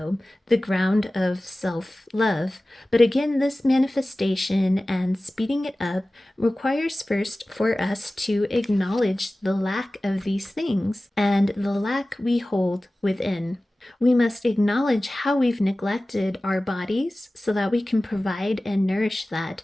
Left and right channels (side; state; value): both; normal; correlation 0.97